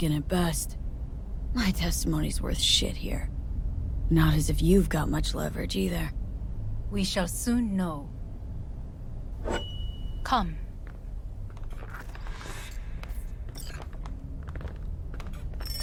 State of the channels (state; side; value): identical; both; correlation 1.00